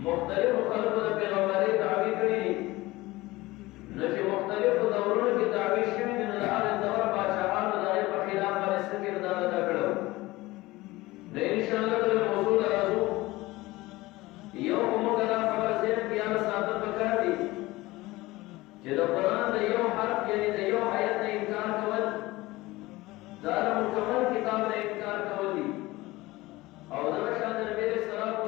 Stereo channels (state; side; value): quieter; right; 19.7 dB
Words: مختلفو خلکو د پیغمبرۍ دعوې کړي دي نو چې مختلفو دورونو کې دعوې شوي دي نو د هغې دور پاچاهانو د هغې په خلاف باندې څه کردار ادا کړی نو انشاءالله د موضوع ته راځو یو خو موږ دا خبره ذهن کې یاد ساتل پکار دي چې د قرآن د یو حرف یعنې د یو آیت نه انکار کول دا د مکمل کتاب نه انکار کول دي او دغه شان د نبي علیه الصلوۃ